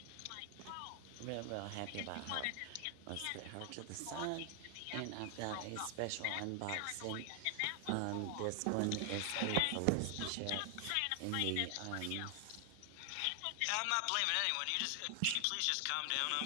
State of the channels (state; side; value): different; both; correlation 0.00